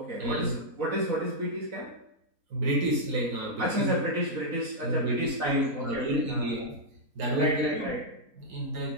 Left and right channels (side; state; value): left; late; 4.3 ms